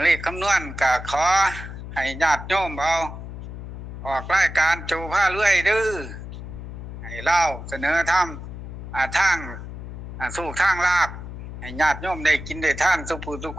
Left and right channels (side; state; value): left; noise; hum, 10 dB below the sound